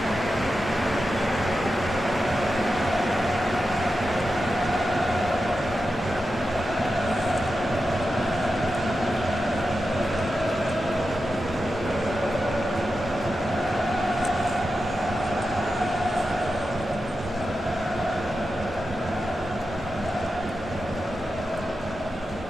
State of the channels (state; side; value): normal; both; correlation 0.90